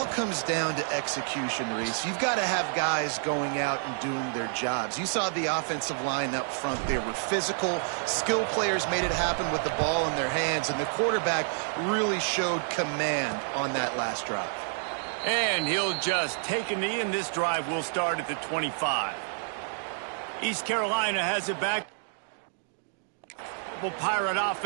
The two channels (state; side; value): silent; left; digital silence